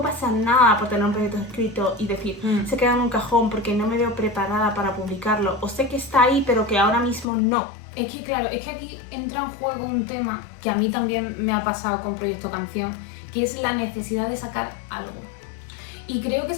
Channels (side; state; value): right; drops out; at 7.2 s